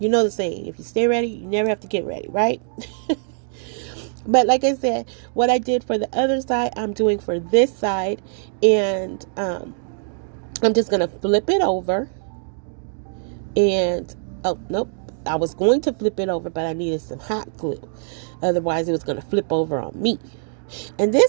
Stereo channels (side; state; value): left; silent; digital silence